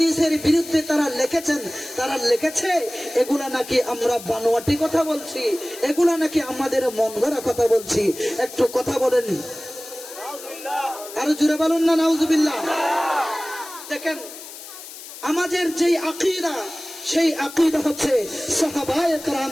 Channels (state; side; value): noise; left; hiss, 14 dB below the sound